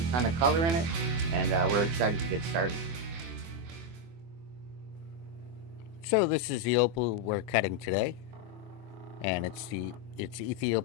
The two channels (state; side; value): late; left; 24 ms